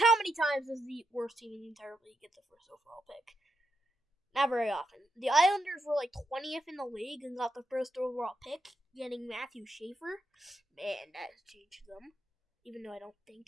many times does the worst team in the entire league get the first overall pick? Not very often. The Islanders were like 20th in the league and got the first overall pick, getting Matthew Schaefer. Man, that has changed them. Even though I don't think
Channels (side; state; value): both; normal; correlation 0.83